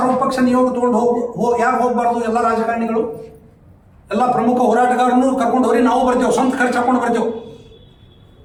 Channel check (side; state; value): both; identical; correlation 1.00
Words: ನಿಯೋಗ ತೊಗೊಂಡು ಯಾಕೆ ಹೋಗಬಾರ್ದು? ಎಲ್ಲ ರಾಜಕಾರಣಿಗಳು, ಎಲ್ಲ ಪ್ರಮುಖ ಹೋರಾಟಗಾರನ್ನು ಕರ್ಕೊಂಡು ಹೋಗಿ ನಾವು ಬರ್ತೇವೆ, ಸ್ವಂತ ಖರ್ಚು ಹಾಕೊಂಡು ಬರ್ತೇವೆ.